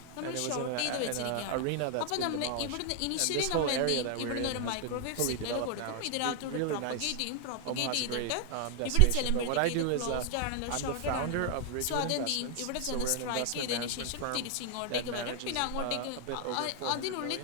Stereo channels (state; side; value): different; both; correlation 0.00